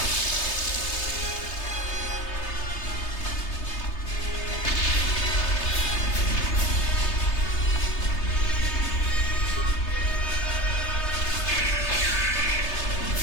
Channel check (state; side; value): late; right; 3.3 ms